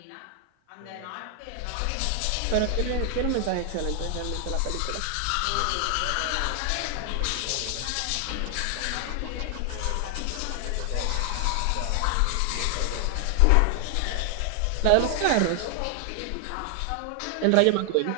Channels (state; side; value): different; both; correlation 0.00